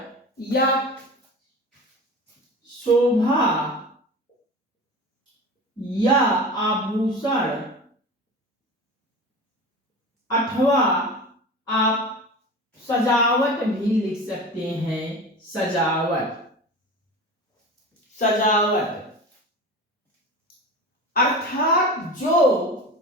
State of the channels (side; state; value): both; normal; correlation 0.32